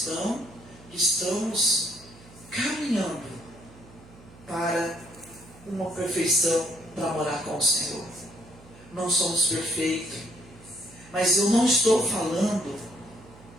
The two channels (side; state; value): right; noise; hum, 22 dB below the sound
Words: que estamos caminhando para uma perfeição, para morar com o Senhor. Não somos perfeitos. Mas eu não estou falando